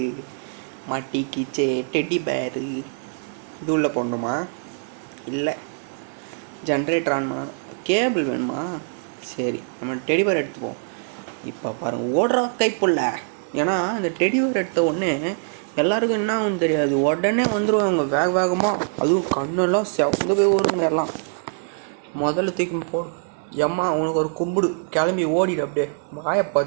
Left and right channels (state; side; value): silent; left; 57 dB below the other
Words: மாட்டிக்கிச்சே. டெடி பேரு இது உள்ளே போடணுமா. இல்லை ஜென்ரேட்டர் ஆன்மா. கேபிள் வேணுமா. சரி நம்ம டெடி பேர் எடுத்துப்போம். இப்போ பாருங்கள் ஓடுறா கைப்புள்ள. ஏன்னா இந்த டெடி பேர் எடுத்த உடனே எல்லாருக்கும் என்ன ஆகும்னு தெரியாது. உடனே வந்துடுவாங்க வேகமாக. அதுவும் கண்ணெல்லாம் செவந்து போய் வருங்க எல்லாம். முதல்ல தூக்கி போடு. எம்மா உனக்கு ஒரு கும்பிடு. கிளம்பி ஓடிடு. அப்படியே வாயை